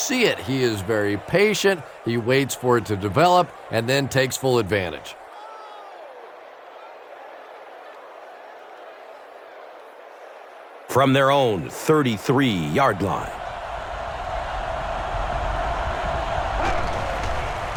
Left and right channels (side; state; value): both; identical; correlation 1.00